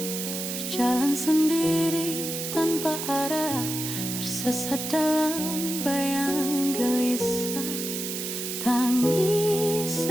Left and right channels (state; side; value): noise; right; hiss, 5 dB below the sound